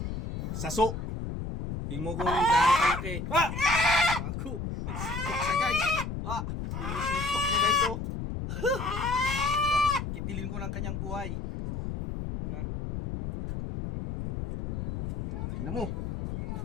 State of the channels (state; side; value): noise; left; rumble, 5 dB below the sound